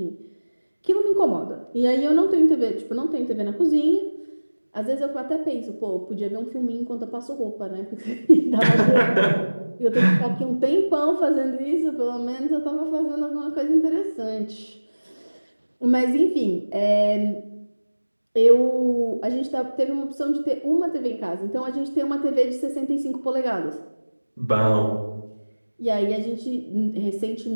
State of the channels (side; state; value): both; inverted; correlation -1.00